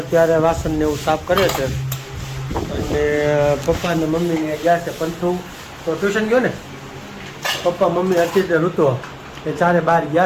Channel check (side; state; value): both; identical; correlation 1.00